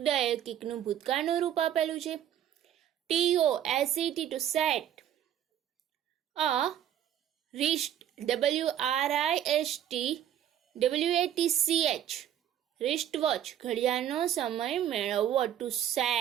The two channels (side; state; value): left; quieter; 10.5 dB